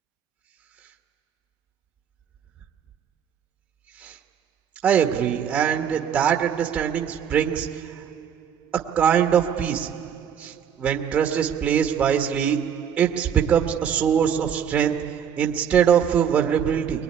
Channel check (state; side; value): quieter; left; 8.3 dB